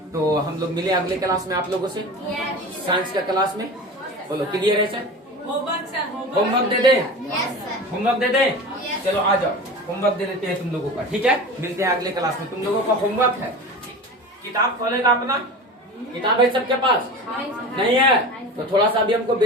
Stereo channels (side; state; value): both; normal; correlation 0.32